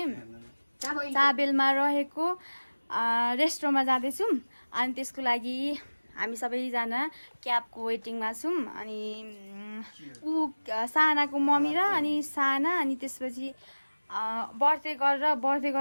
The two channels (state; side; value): inverted; both; correlation -1.00